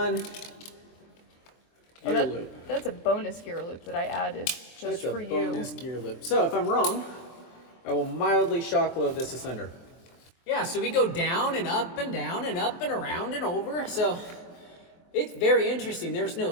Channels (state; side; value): late; right; 23 ms